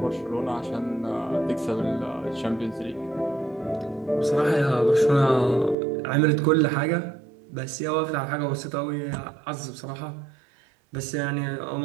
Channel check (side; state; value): left; drops out; at 5.8 s